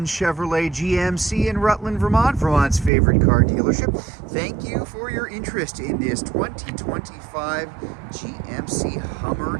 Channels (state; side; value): drops out; left; at 2.9 s